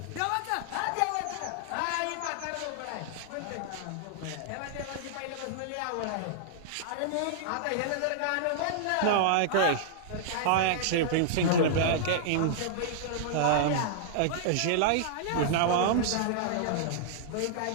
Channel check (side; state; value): both; different; correlation -0.01